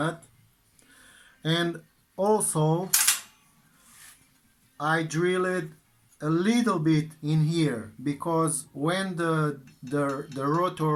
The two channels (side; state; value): both; identical; correlation 1.00